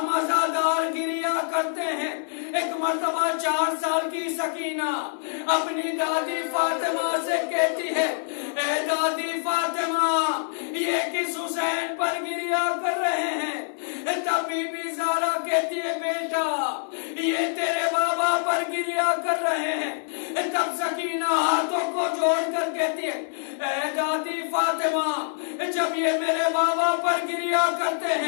عزادار گریا کرتے ہیں، ایک مرتبہ 4 سال کی سکینہ اپنی دادی فاطمہ سے کہتی ہے، اے دادی فاطمہ، یہ کس حسین پر گریا کر رہے ہیں؟ تب بی بی زارا کہتی ہے، بیٹا یہ تیرے بابا پر گریا کر رہے ہیں۔ تب سکینہ ہاتھوں کو جوڑ کر کہتی ہے، اے دادی فاطمہ، جب یہ میرے بابا پر گریا کرتے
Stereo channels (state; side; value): silent; right; digital silence